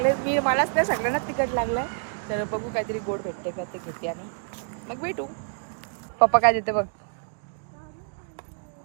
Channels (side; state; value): left; silent; digital silence